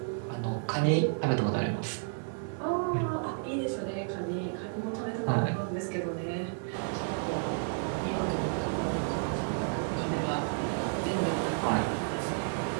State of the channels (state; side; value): silent; left; 57 dB below the other